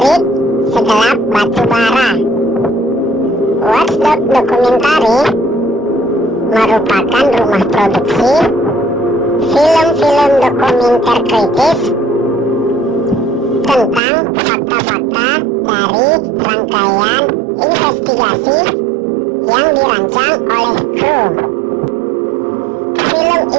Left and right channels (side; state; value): left; drops out; at 14.0 s